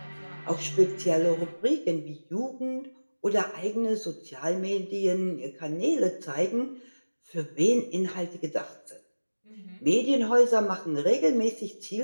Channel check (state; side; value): inverted; both; correlation -1.00